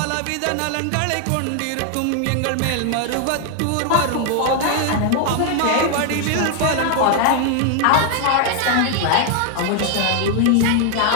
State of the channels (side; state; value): both; different; correlation 0.00